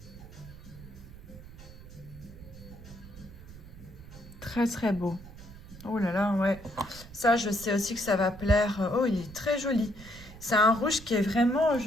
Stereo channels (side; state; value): right; noise; rumble, 16 dB below the sound